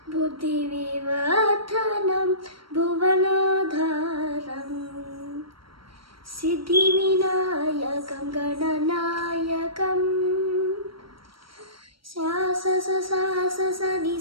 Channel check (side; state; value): left; late; 0.74 ms